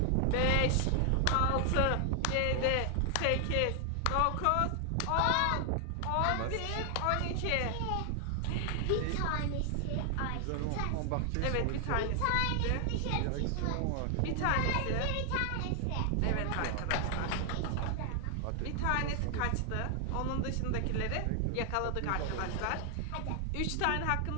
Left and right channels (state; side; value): different; both; correlation 0.00